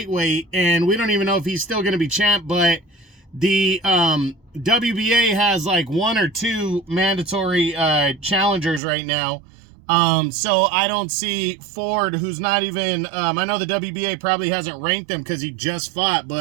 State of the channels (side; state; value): left; drops out; at 8.8 s